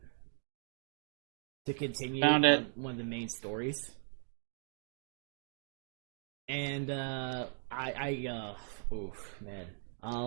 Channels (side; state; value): left; silent; digital silence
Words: to continue Found it. one of the main stories. And there